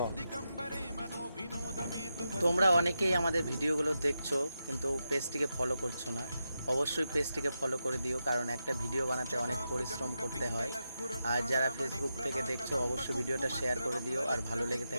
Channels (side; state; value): both; inverted; correlation -0.87